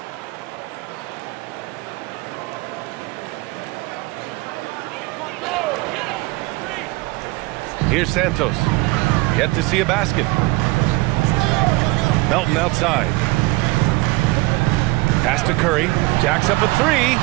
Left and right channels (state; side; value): quieter; left; 22.7 dB